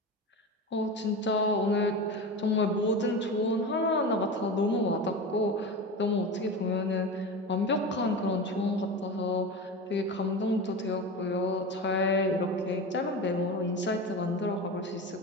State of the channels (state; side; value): normal; both; correlation 0.26